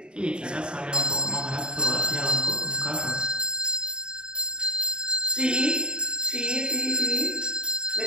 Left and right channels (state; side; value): late; left; 0.050 ms